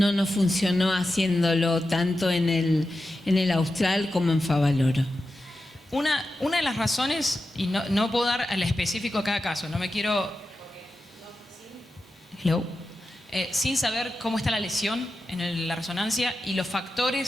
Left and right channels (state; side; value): normal; both; correlation 0.91